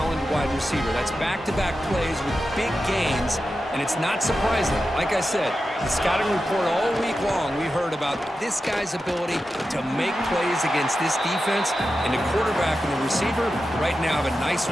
wide receiver. That's back-to-back plays with big gains, And it's not surprising. Like I said, the scouting report all week long, we heard about this guy's ability to make plays against this defense. And the quarterback and the receiver right now have a nice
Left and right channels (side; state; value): both; normal; correlation 0.91